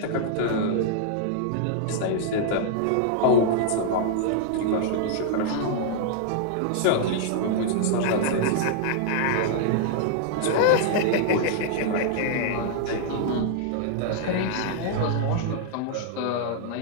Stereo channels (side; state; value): both; different; correlation -0.01